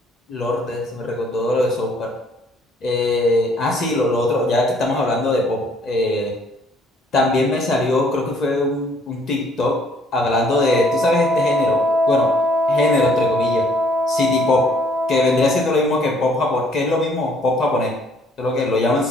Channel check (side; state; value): both; normal; correlation 0.62